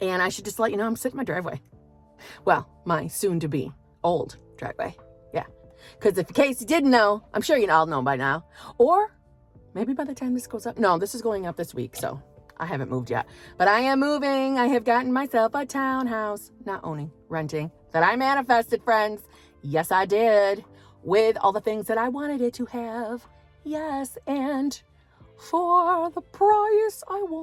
And I should just let you know I'm sitting in my driveway. Well, my soon-to-be old driveway. Yeah, because if in case you didn't know, I'm sure you all know by now. Or maybe by the time this goes up. No, this is going up this week, so I haven't moved yet. But I am moving. I have gotten myself a townhouse. Not owning, renting. That I manifested, friends. Yes, I did. With all the things that I wanted it to have. Yes, and for the price I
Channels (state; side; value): identical; both; correlation 1.00